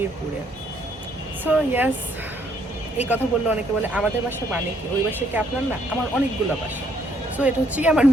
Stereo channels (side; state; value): both; normal; correlation 0.69